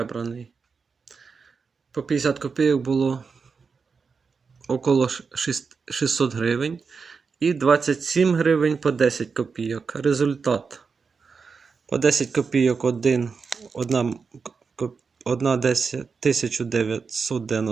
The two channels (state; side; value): quieter; left; 5.2 dB